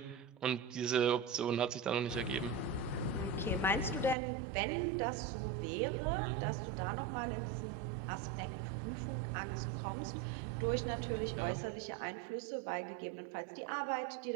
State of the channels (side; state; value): left; drops out; at 4.2 s